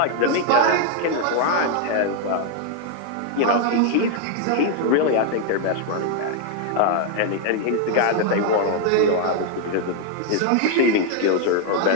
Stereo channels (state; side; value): different; both; correlation 0.00